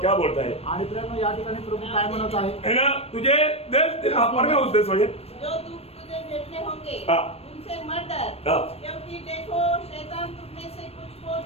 क्या बोलता है आणि प्रेम या ठिकाणी प्रभू काय म्हणत आहे, है ना, तुझे देश में उस देश वजह जो दुख तुझे भेटने होंगे हाँ. उनसे मत डर, हाँ. क्योंकि देखो शैतान तुम में से कुछ को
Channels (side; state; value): right; late; 0.29 ms